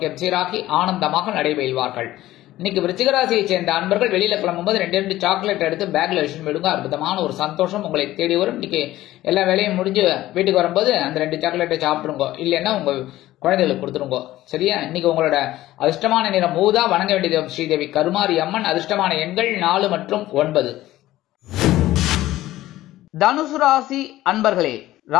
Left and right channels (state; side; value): quieter; right; 15.5 dB